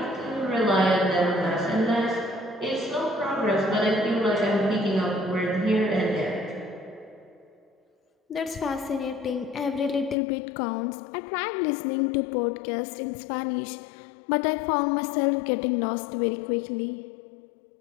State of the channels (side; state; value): right; drops out; at 10.2 s